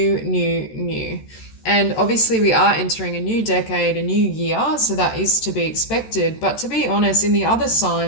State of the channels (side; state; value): right; late; 13 ms